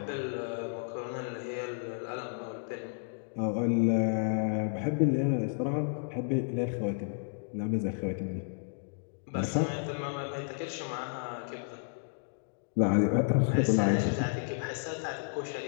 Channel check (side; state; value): right; silent; digital silence